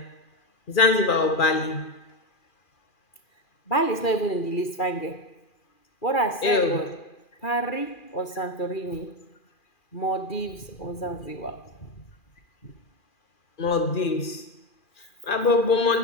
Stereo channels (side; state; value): right; late; 2.4 ms